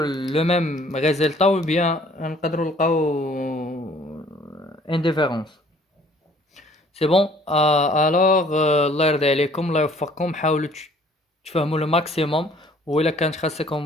le même résultat ou bien نقدروا نلقاو indifférence. c'est bon. alors الله يرضي عليكم الله يوفقكم، حاولوا تفهموا لو ماكسيموم، وإلا كانت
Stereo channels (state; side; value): normal; both; correlation 0.56